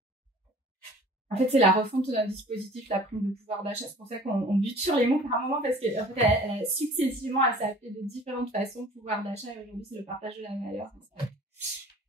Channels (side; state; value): both; normal; correlation 0.47